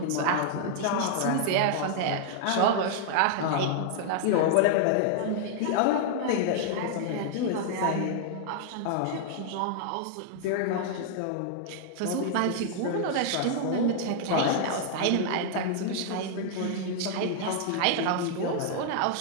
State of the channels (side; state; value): both; different; correlation 0.00